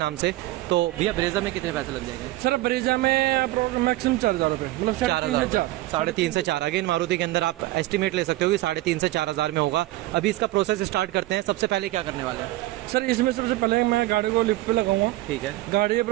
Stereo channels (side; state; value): left; quieter; 17.1 dB